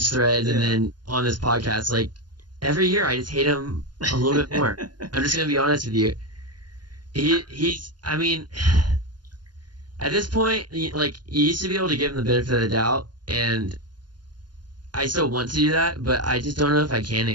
threads and then on this podcast. Like every year, I just hate him a little bit more. I'm just gonna be honest with you. He's I mean, at this point, like you used to be able to give him the benefit of the doubt, and I still want to do that, but I just don't know if I can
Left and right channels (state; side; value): late; left; 0.70 ms